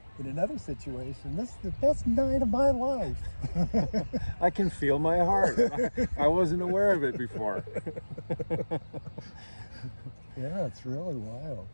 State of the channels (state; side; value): inverted; both; correlation -1.00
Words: in another situation. This is the best night of my life. I can feel my heart. I wasn't aware of it before. Yeah, it's really wild.